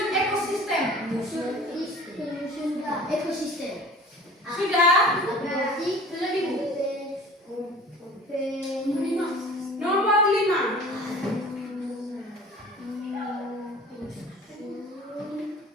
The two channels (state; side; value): normal; both; correlation 0.44